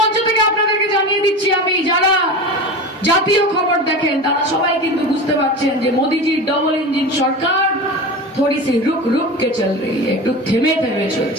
থেকে আপনাদেরকে জানিয়ে দিচ্ছি আমি, যারা জাতীয় খবর দেখেন তারা সবাই কিন্তু বুঝতে পারছেন যে মোদিজির ডবল ইঞ্জিন সরকার थोड़ी सी रुक रुक के चल रही है, একটু থেমে থেমে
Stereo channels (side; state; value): both; normal; correlation 0.29